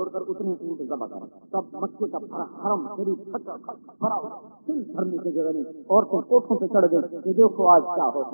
کر اتنے اونٹ ذبح کرو۔ تب مکے کا حرم شریف بھرا دل بھرنے کی جگہ نہیں، عورتیں کوٹھوں پہ چڑھ گئی کہ دیکھو آج کیا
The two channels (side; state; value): both; inverted; correlation -1.00